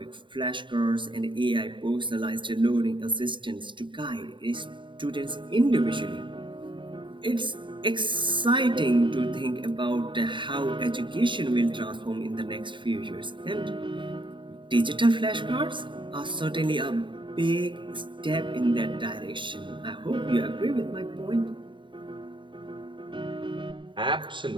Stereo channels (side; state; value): left; late; 0.23 ms